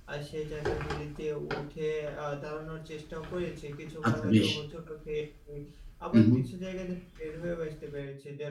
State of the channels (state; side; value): identical; both; correlation 1.00